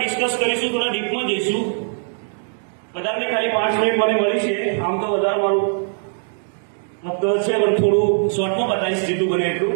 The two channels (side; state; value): left; silent; digital silence